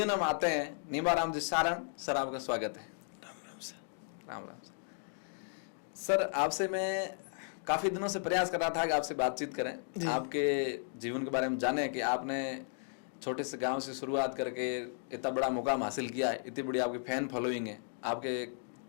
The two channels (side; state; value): right; silent; 54 dB below the other